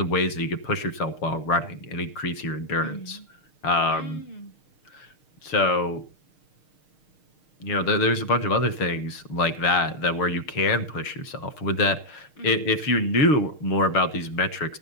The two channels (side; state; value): right; late; 6.5 ms